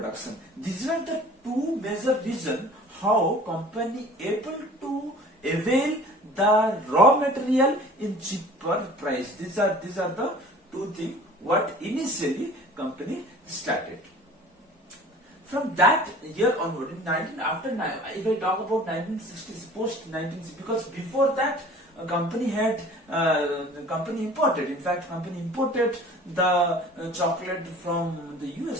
These are the two major reasons how company able to avail the raw material in cheaper price. These are the two things what initially company started. From that year onward, in 19 after if I talk about 1960s, post 1960s, because before that company had company imported. In fact, company imported the chocolate from the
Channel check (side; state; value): both; normal; correlation 0.46